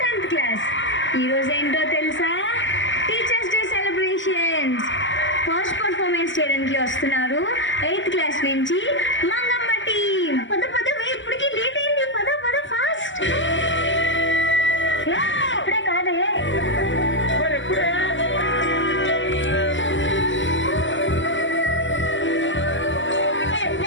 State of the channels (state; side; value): late; right; 0.55 ms